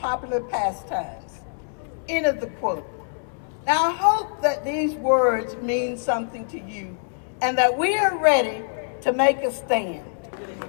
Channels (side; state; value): right; silent; 60 dB below the other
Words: pastimes. End of the quote. Now I hope that these words mean something to you and that we are ready to make a stand.